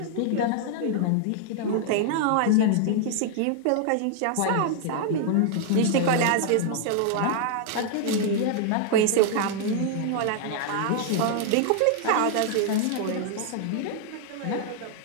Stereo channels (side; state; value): both; different; correlation 0.00